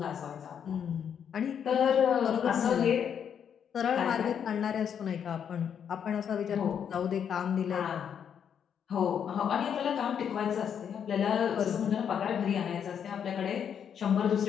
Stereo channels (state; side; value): quieter; right; 8.1 dB